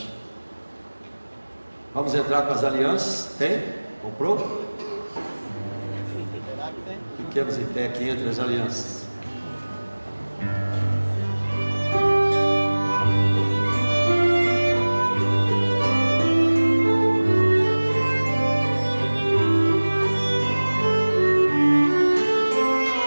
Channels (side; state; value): both; inverted; correlation -1.00